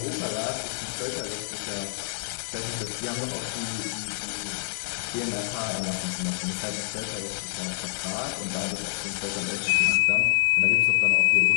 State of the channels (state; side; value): silent; right; digital silence